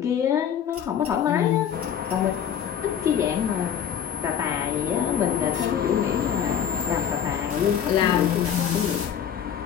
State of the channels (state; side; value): quieter; right; 8.6 dB